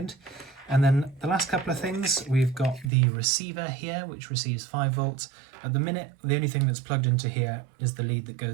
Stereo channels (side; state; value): left; drops out; at 2.9 s